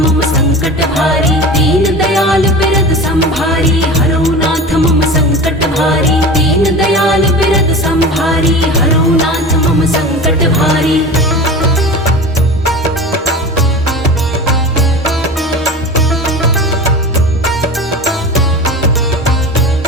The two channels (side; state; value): both; normal; correlation 0.32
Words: मम संकट भारी दीन दयाल बिरद संभारी हरो नाथ मम संकट भारी दीन दयाल बिरद संभारी हरो नाथ मम संकट भारी